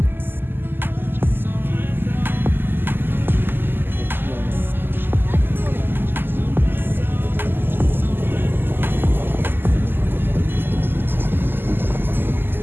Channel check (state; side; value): late; left; 0.097 ms